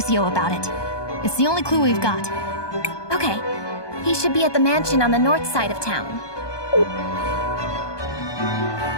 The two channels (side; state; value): right; late; 1.2 ms